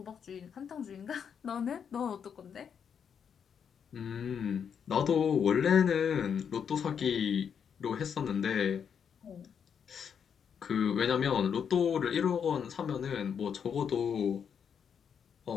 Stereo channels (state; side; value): quieter; right; 7.4 dB